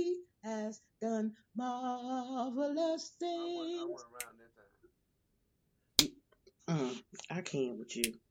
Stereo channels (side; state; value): both; identical; correlation 1.00